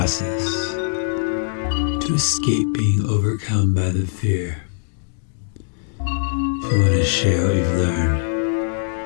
to escape being overcome by the fear. If you want to share what you've learned,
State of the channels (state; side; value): silent; right; digital silence